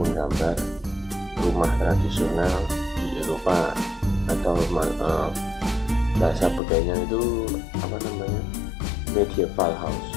rumah tradisional di Eropa, atau bahasa bedanya itu apa namanya, medieval house.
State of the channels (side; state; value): right; drops out; at 6.6 s